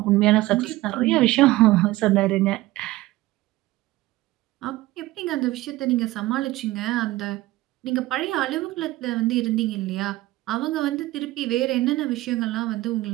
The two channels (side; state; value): left; quieter; 17.9 dB